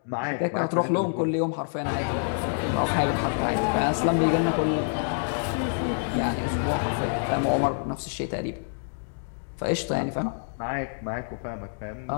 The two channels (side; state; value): right; silent; digital silence